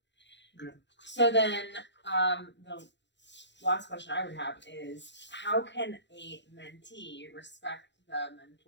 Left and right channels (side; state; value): right; late; 0.52 ms